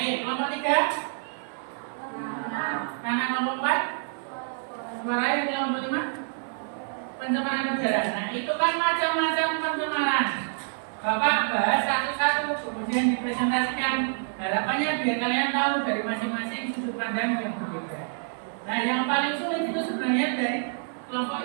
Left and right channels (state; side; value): silent; left; 58 dB below the other